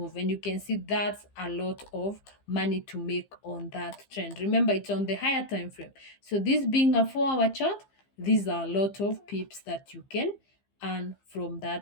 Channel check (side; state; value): right; late; 15 ms